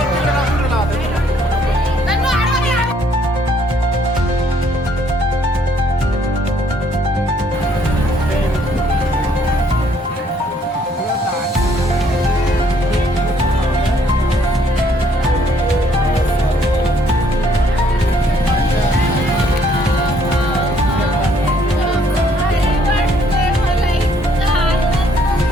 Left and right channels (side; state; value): both; normal; correlation 0.66